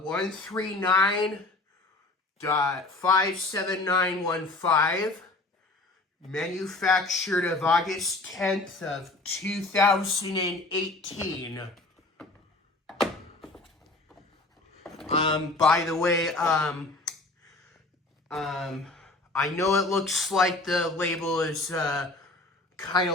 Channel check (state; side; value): quieter; right; 3.0 dB